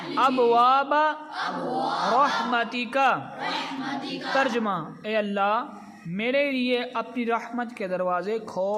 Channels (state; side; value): identical; both; correlation 1.00